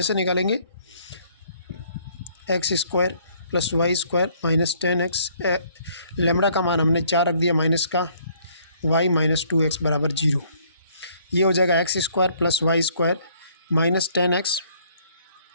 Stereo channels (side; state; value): both; inverted; correlation -0.63